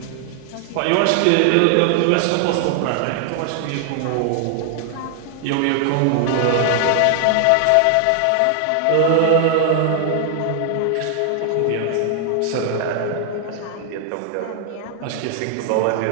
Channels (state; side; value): different; both; correlation 0.00